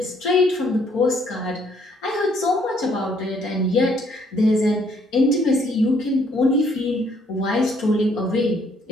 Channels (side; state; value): both; normal; correlation 0.66